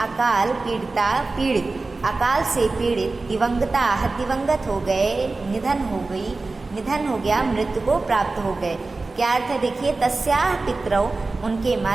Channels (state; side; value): quieter; left; 3.5 dB